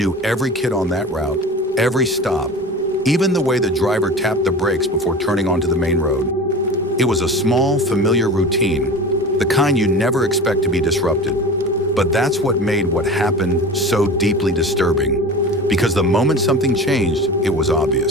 every kid on that route, every stop, even the way the driver tapped the brakes before turning onto the main road. It was a small, familiar routine, the kind you never expect to be disrupted. But that's what made what happened so deeply disturbing, because the moment something changed, it was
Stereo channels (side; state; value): both; normal; correlation 0.34